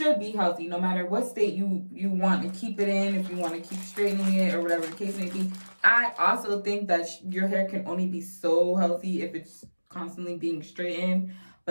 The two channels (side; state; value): both; inverted; correlation -1.00